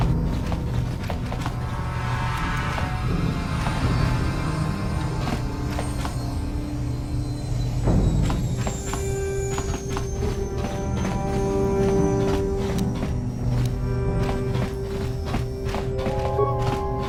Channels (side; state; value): both; identical; correlation 1.00